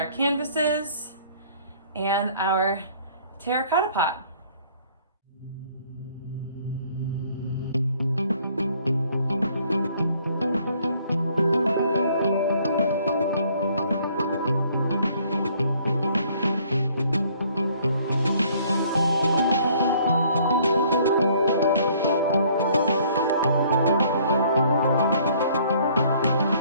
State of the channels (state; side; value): inverted; both; correlation -0.60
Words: canvases and our terracotta pot.